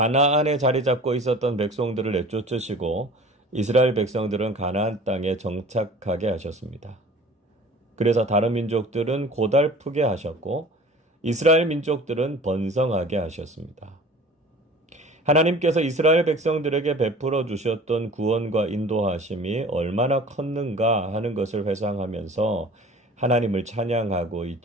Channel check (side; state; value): both; normal; correlation 0.43